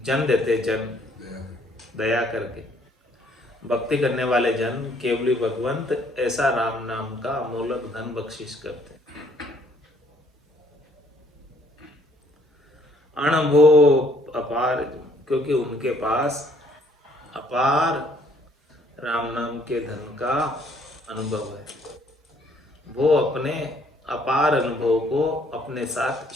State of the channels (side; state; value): both; normal; correlation 0.64